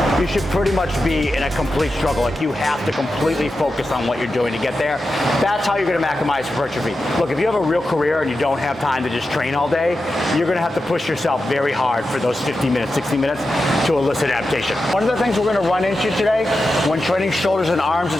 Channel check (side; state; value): both; normal; correlation 0.90